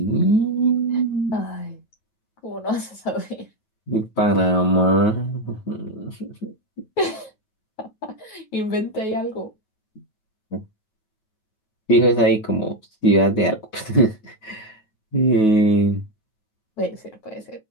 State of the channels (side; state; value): right; late; 9.3 ms